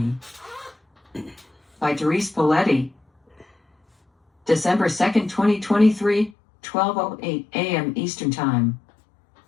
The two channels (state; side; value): drops out; right; at 6.4 s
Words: By Therese Poletti. December 2nd, 2023, 12:08 a.m. Eastern Time.